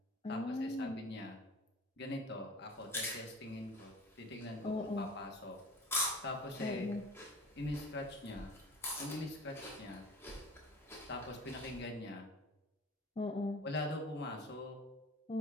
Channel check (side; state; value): both; normal; correlation 0.40